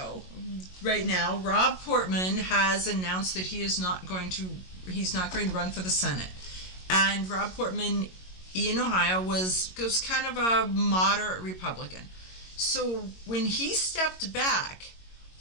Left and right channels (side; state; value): right; late; 22 ms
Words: right now, Rob Portman has announced that he's not going to run for the Senate. And Rob Portman in Ohio was kind of a moderate Republican. So when he stepped back,